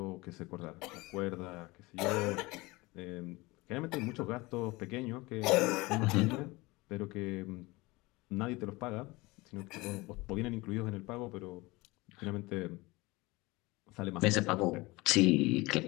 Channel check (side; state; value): right; quieter; 22.4 dB